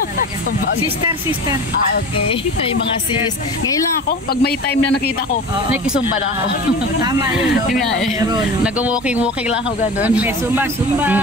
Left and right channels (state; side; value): normal; both; correlation 0.34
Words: Sumbang. Sister. Okay. May mga sis. Ngayon lang ako, pag may time na nakita ko, nakikisumba na ako. Tama yun, no? Yun nga eh. Nag-walking lang ako gano'n. May Zumba.